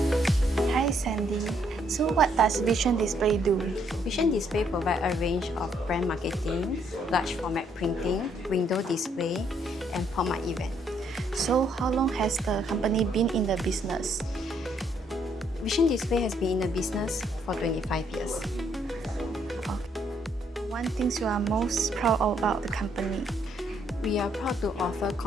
Hi Sandy. So what does Vision Display do? Vision Display provides a range of brand marketing, large format printing, window display, and pop-up event. So how long has the company been in the business? Vision Display has been in the business for 25 years. One thing you are most proud of about the company? We are proud to offer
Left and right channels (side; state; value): both; normal; correlation 0.70